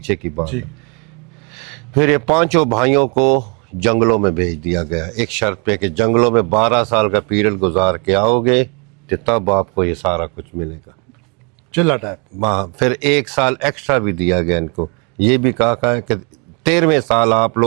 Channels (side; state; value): left; quieter; 34.0 dB